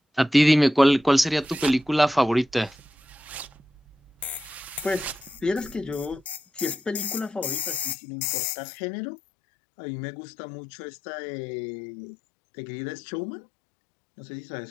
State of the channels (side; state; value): right; drops out; at 8.0 s